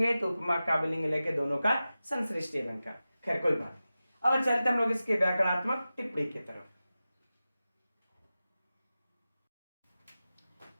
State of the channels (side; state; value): both; inverted; correlation -0.94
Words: तो उपमा काव्यलिंग लेके दोनों का संश्लिष्ट अलंकार। खैर कोई बात नहीं। अब चलते हम लोग इसके व्याकरणात्मक टिप्पणी की तरफ।